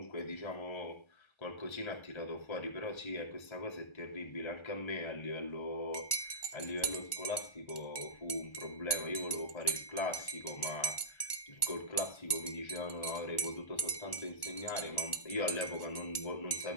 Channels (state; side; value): late; right; 1.3 ms